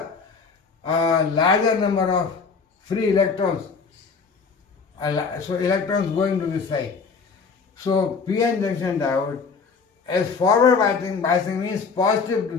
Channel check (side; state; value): right; quieter; 5.1 dB